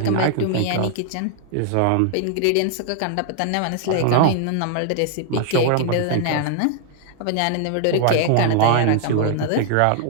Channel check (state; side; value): different; both; correlation 0.00